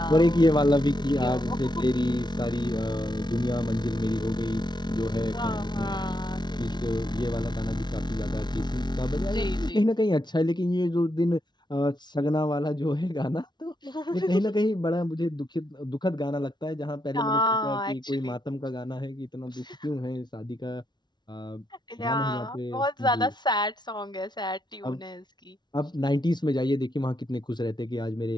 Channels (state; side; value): late; right; 0.21 ms